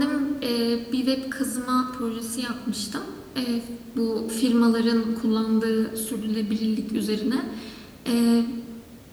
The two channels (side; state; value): both; identical; correlation 1.00